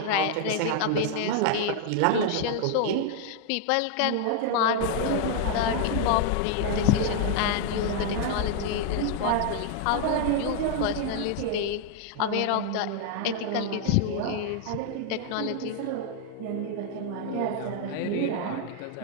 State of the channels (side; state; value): both; different; correlation 0.00